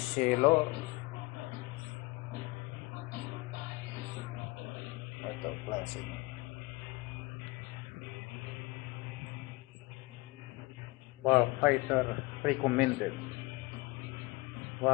Cielo. Ito, classic. Warfighter recommended.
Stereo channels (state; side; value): quieter; right; 22.9 dB